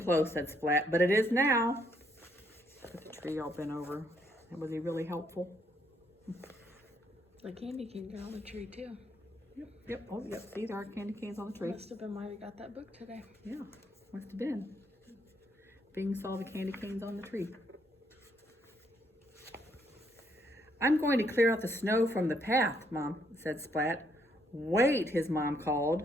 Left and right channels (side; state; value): both; normal; correlation 0.72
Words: said Splat, but it is now. Put the tree all bent over. Was he really helpful? The candy cane got on the tree too. Yep. Oh, yep. See, there are candy canes on the tree. Must have been why we got that book today. Yeah, must have been. Bing saw the candy canes on the tree. I'm going to clear out the snow from the path, Mom, said Splat. Wait, his mom